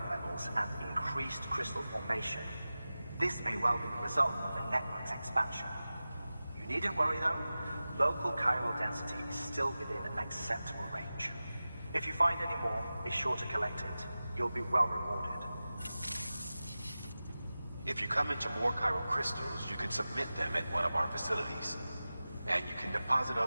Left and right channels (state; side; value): inverted; both; correlation -0.95